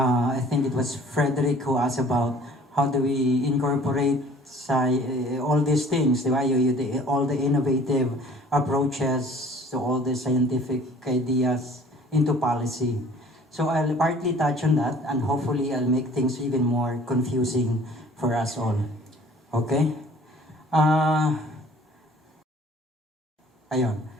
think it was Frederick who asked about how do we incorporate all these things, di ba? All the innovative approaches to all the scientific ideas into policy. So I'll partly touch on that, and hopefully I'll make things even more confusing for us all. Okay? Ayun.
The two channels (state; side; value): normal; both; correlation 0.52